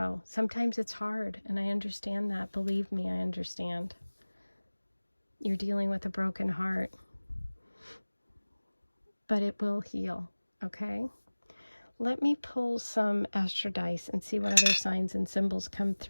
Sometimes it's hard, and I understand that. Believe me, I understand. You're dealing with a broken heart, but it will heal, okay? Let me pull some astro dice and see what other signs and symbols come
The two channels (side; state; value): both; inverted; correlation -1.00